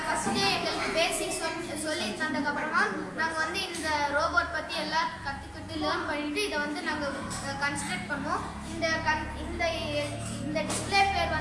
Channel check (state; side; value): identical; both; correlation 1.00